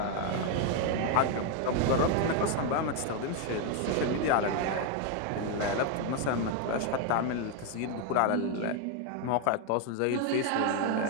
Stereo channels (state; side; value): different; both; correlation 0.01